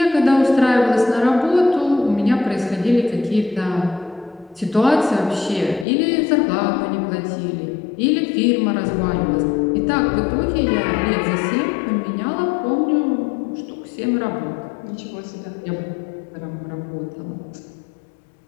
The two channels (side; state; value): right; drops out; at 5.9 s